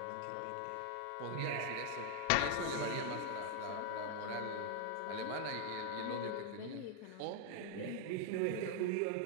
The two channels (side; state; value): both; different; correlation 0.00